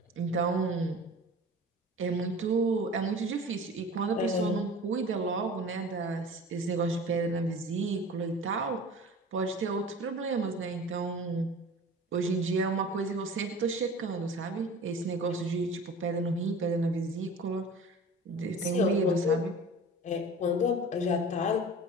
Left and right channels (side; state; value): both; normal; correlation 0.39